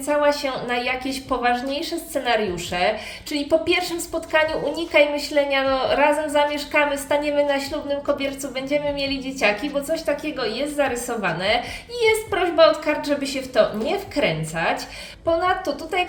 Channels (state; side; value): identical; both; correlation 1.00